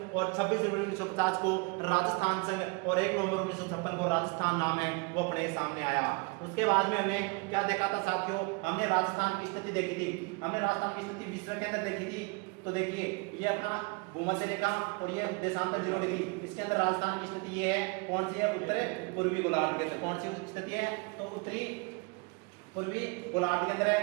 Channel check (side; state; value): left; quieter; 29.4 dB